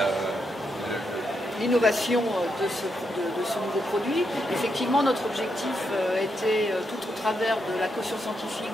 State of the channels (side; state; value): both; normal; correlation 0.81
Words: l'innovation de ce nouveau produit. Effectivement, notre objectif était, tout au travers de la caution